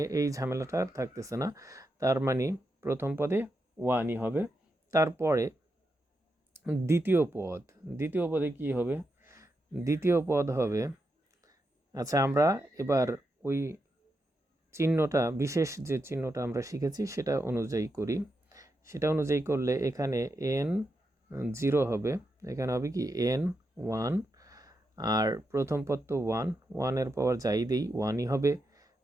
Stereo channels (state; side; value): normal; both; correlation 0.85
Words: এই ঝামেলাটা আর থাকতেছে না। তার মানে প্রথম পদে 1ই হবে। তারপরে দ্বিতীয় পদে কি হবে? দ্বিতীয় পদ হবে, আচ্ছা, আমরা এবার ওই চিহ্নটা, বিশেষ যে চিহ্নটা আমরা শিখেছি সেটা অনুযায়ী করি। সেটা অনুযায়ী করলে এখানে n 0 হবে, এখানে হবে কি n 1, আর প্রথম পদ তো 1 এর পাওয়ার যাই দেই 1ই হবে।